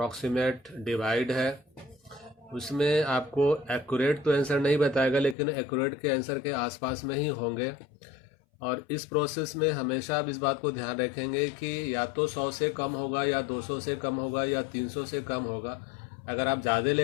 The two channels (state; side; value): drops out; right; at 5.4 s